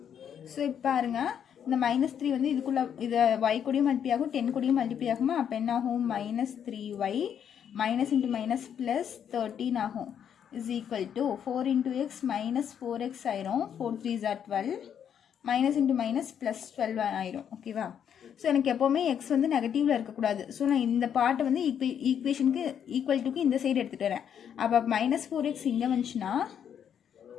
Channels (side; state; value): right; quieter; 8.6 dB